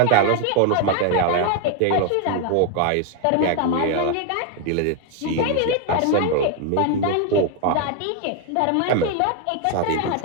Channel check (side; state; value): both; different; correlation 0.01